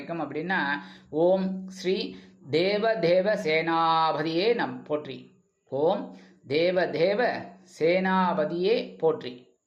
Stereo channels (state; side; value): identical; both; correlation 1.00